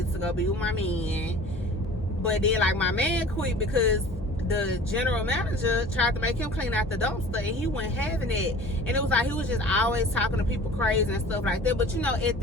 to go be with my man. But then like my man quit because the general manager tried to make him clean out the dumpster, and he wasn't having it. And it was like he was just always talking to people crazy and stuff like that. But you know, at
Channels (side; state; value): both; normal; correlation 0.43